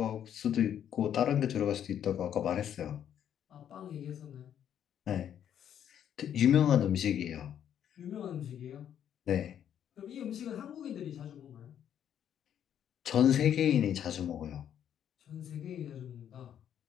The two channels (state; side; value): quieter; right; 9.6 dB